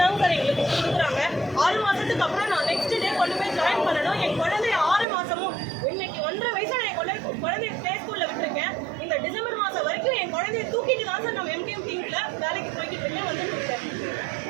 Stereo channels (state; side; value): drops out; left; at 5.1 s